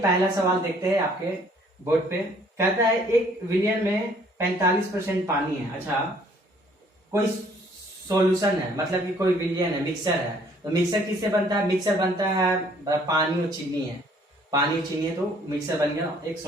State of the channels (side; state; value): both; normal; correlation 0.60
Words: सवाल देखते हैं। आपके बोर्ड पे कहता है एक विलियन में 45% पानी है। अच्छा, कोई सॉल्यूशन है, मतलब कि कोई विलियन है, मिक्सर है। तो मिक्सर किससे बनता है? मिक्सर बनता है पानी और चीनी है। पानी और चीनी है तो मिक्सर बन गया, एक